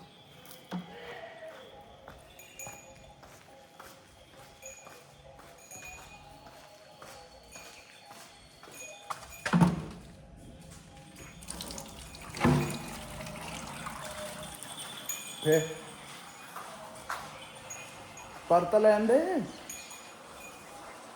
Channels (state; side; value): identical; both; correlation 1.00